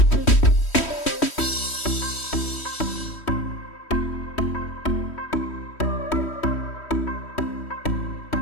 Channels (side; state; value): right; late; 3.1 ms